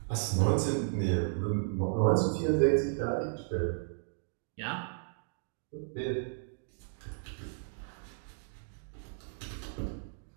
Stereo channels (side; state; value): left; silent; digital silence